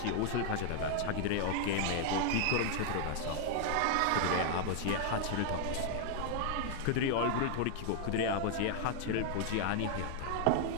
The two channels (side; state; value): both; different; correlation 0.00